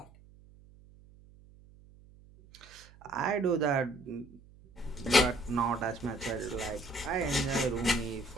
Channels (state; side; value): noise; right; hum, 24 dB below the sound